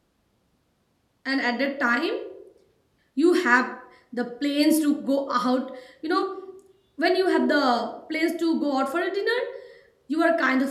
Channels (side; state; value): both; identical; correlation 1.00